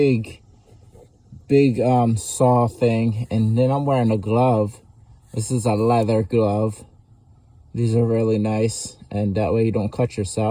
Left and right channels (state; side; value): identical; both; correlation 1.00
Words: saw thing, and then I'm wearing a glove. This is a leather glove. These are really nice, and that way you don't cut